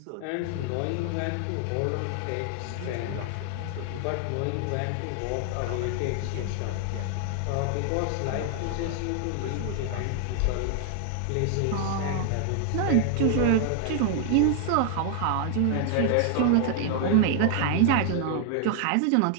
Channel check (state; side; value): different; both; correlation 0.00